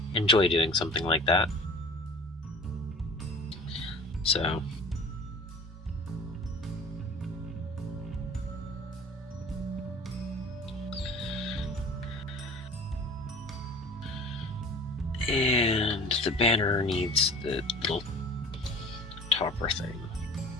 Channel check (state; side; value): normal; both; correlation 0.43